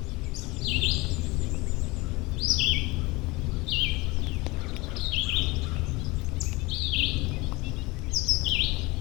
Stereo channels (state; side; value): quieter; right; 23.4 dB